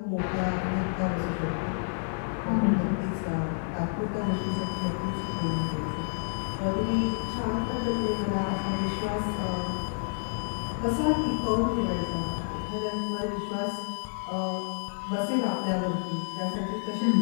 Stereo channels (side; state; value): right; silent; digital silence